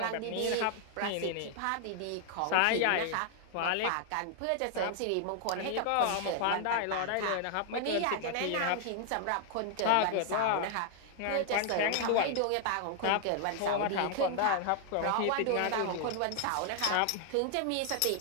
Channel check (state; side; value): different; both; correlation 0.00